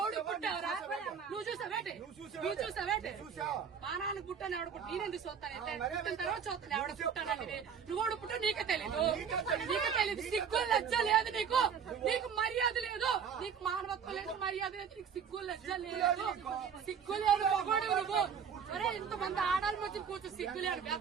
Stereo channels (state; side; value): quieter; left; 7.1 dB